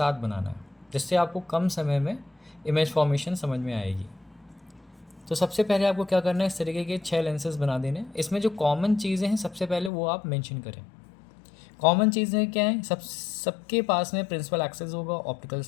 बनाना है, जिससे आपको कम समय में इमेज फॉर्मेशन समझ में आएगी। तो सबसे पहले आपको क्या करना है, इस तरीके के 6 लेंसेज बना देने। इसमें जो कॉमन चीज़ें हैं सबसे पहले वो आप मेंशन करें। कॉमन चीज़ें क्या हैं? सबके पास में प्रिंसिपल एक्सेस होगा, ऑप्टिकल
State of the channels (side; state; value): right; drops out; at 9.9 s